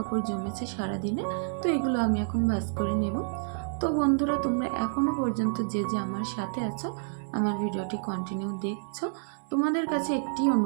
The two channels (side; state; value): left; silent; 59 dB below the other